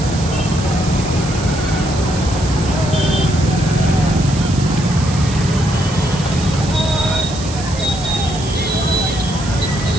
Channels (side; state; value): right; noise; hiss, 11 dB below the sound